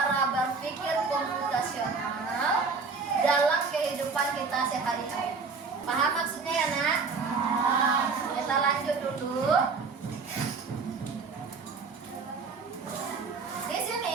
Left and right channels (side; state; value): left; quieter; 4.7 dB